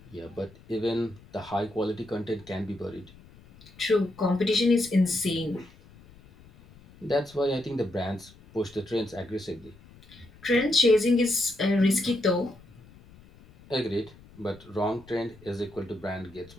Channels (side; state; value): left; noise; rumble, 23 dB below the sound